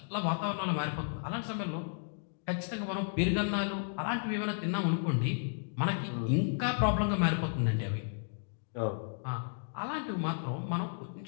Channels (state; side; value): silent; right; digital silence